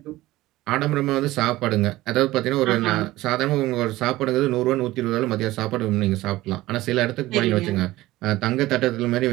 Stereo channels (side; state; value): left; quieter; 17.4 dB